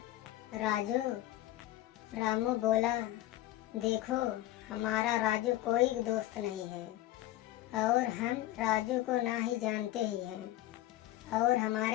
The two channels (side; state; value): right; quieter; 15.3 dB